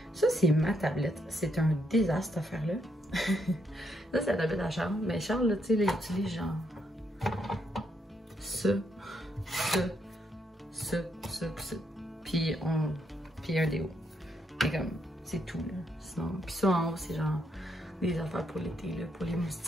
Ça, c'est ma tablette. C'est un désastre, cette affaire-là. Ça, c'est la tablette à Charles. Mais Charles, là, tu sais, il utilise genre ça. Puis un déo. Et comme, c'est tout, là. Sinon, puis ça, en haut, c'est genre des affaires pour l'été, là, pour les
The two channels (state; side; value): normal; both; correlation 0.76